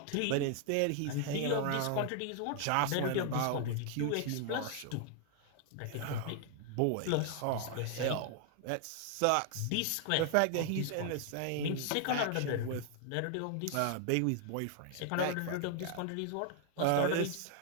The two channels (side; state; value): both; different; correlation 0.00